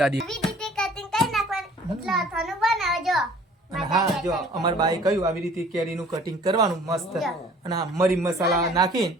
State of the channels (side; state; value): both; normal; correlation 0.52